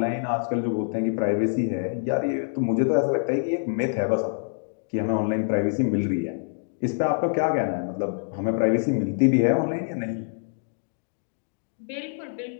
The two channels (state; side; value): silent; right; digital silence